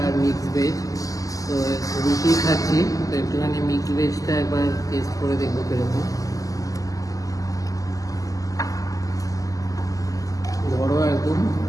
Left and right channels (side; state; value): right; late; 0.17 ms